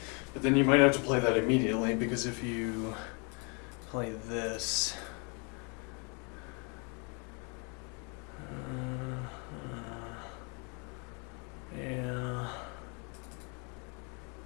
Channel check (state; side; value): quieter; right; 34.8 dB